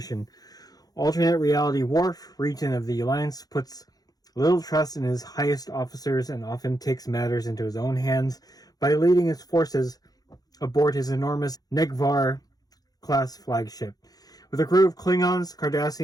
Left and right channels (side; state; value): right; late; 0.18 ms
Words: Alternate reality Worf, Regent of the Alliance, puts little trust in his highest officers and often takes matters into his own hands by leading his forces aboard his enormous Negvar-class flagship. With a crew of Klingons,